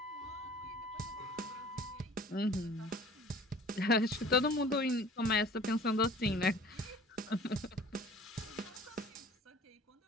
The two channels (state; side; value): normal; both; correlation 0.47